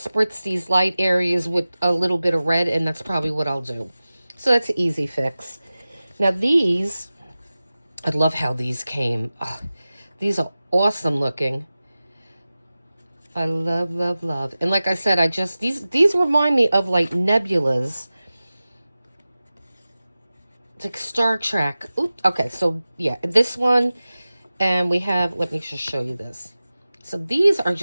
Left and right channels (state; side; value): inverted; both; correlation -0.96